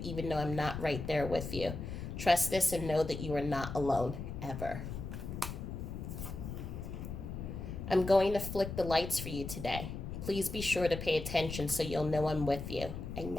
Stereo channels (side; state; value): left; noise; rumble, 7 dB below the sound